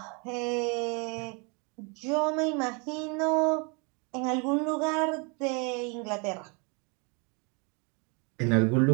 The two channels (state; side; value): quieter; left; 32.6 dB